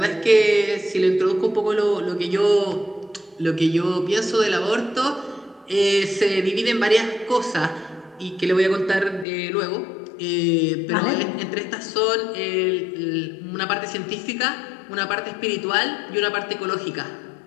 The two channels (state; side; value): drops out; right; at 9.2 s